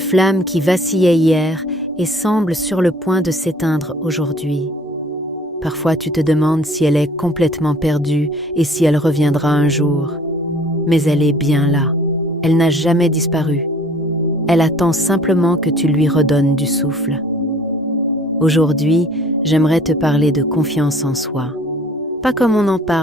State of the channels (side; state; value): both; normal; correlation 0.53